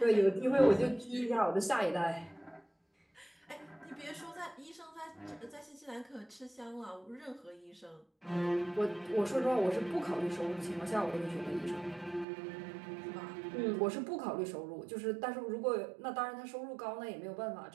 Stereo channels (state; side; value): drops out; left; at 12.2 s